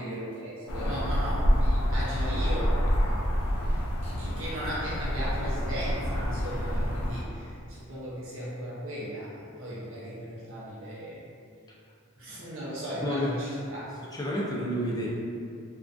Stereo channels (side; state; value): both; normal; correlation 0.78